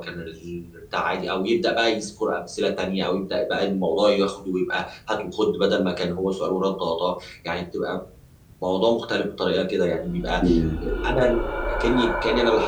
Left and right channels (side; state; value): both; identical; correlation 1.00